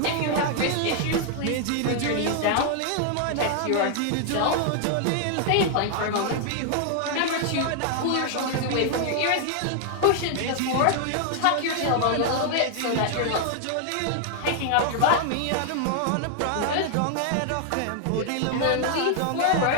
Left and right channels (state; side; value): different; both; correlation 0.00